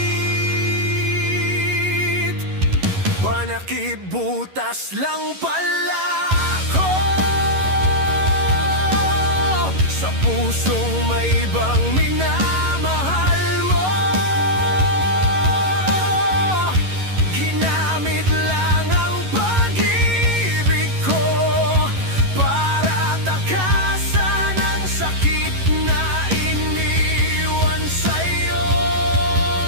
Panakibutas lang pala ako sa pusong may ibang minamahal mo. Ginamit lang ang pag-ibig ko para takasan ang sakit na iniwan sa'yo.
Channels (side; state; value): left; late; 11 ms